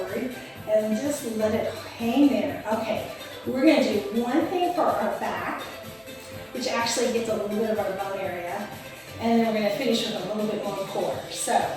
and just let it hang there. Okay, we're gonna do one thing for our back, which actually gets a little bit of our bum area, and then we're gonna finish with a little bit more core. So,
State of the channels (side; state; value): both; identical; correlation 1.00